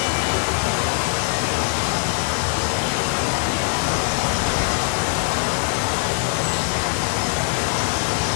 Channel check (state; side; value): quieter; right; 37.2 dB